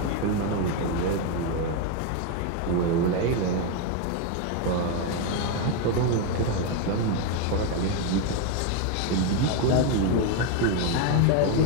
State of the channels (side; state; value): both; different; correlation 0.02